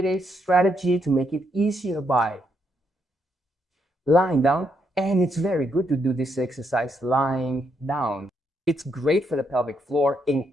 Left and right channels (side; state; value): both; normal; correlation 0.77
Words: a strategy to make it easier by lying down. And it's very good to do this exercise lying down. It's great for the pelvic floor,